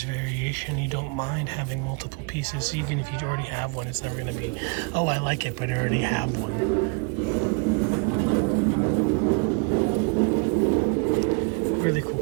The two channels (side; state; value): left; quieter; 35.5 dB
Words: variation, you don't mind having multiple pieces. Even if you already have one, it's never going to be, oh, I like it, but I already have one. Really cool